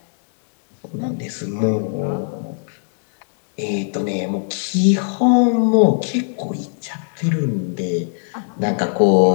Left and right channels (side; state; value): right; silent; digital silence